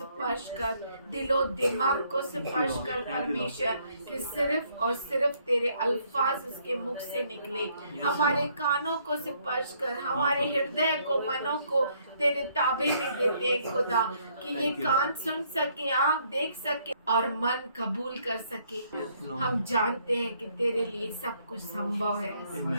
कर, दिलो दिमाग को स्पर्श कर परमेश्वर, कि सिर्फ और सिर्फ तेरे अल्फाज उसके मुख से निकले। हमारे कानों को स्पर्श कर, हमारे हृदय को, मनों को तेरे ताबे में देते खुदा, कि ये कान सुन सके, आँख देख सके और मन कबूल कर सके। हम जानते हैं कि तेरे लिए सब कुछ संभव है।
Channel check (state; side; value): inverted; both; correlation -0.68